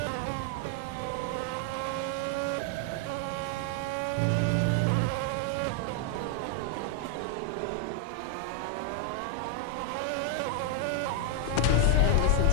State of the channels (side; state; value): both; different; correlation 0.00